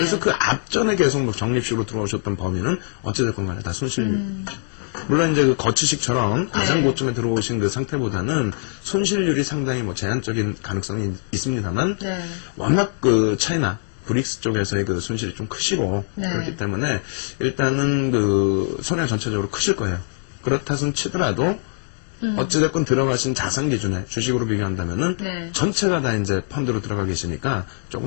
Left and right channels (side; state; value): right; silent; digital silence